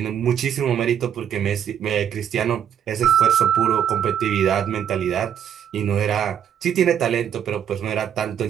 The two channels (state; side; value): quieter; left; 9.0 dB